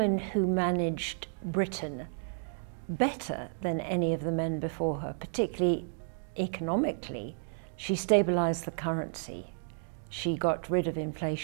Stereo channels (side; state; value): left; silent; digital silence